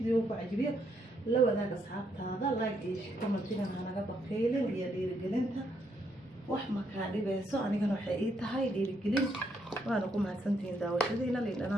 ku cajibiyo la wadaag asxaabtaada like iyo commentina hanaga baqeylin iyo dhiirigelinta wax ma kaa dhibayso anigana waxay ii tahay dhiirigelin waana ku mahadsantihiin daawashadiina liin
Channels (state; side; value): normal; both; correlation 0.75